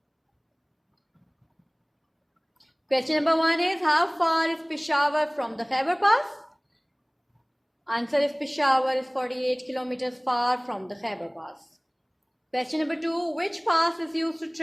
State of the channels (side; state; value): both; identical; correlation 1.00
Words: Question number 1 is, how far is Peshawar from the Khyber Pass? Answer is Peshawar is 48 kilometers far from the Khyber Pass. Question number 2, which pass is used to